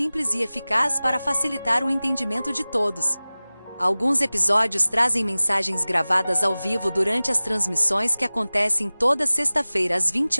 e eficaz para facilitar o entendimento de todos. Alguns episódios trazem mensagens gravadas ao vivo durante as transmissões que acontecem toda sexta-feira às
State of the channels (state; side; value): inverted; both; correlation -0.99